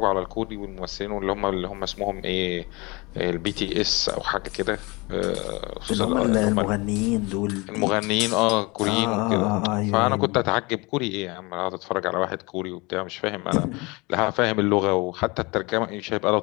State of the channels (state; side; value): quieter; right; 25.9 dB